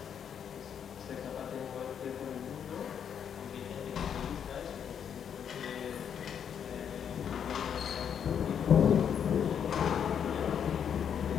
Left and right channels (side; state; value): right; quieter; 8.2 dB